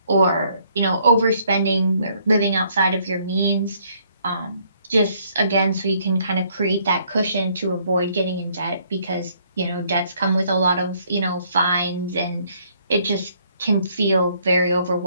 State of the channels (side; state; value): both; inverted; correlation -0.67